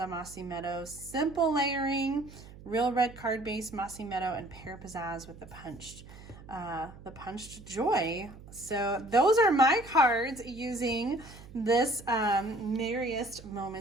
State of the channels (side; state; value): right; noise; hum, 18 dB below the sound